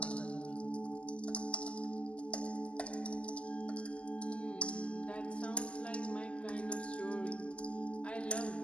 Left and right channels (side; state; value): right; late; 0.061 ms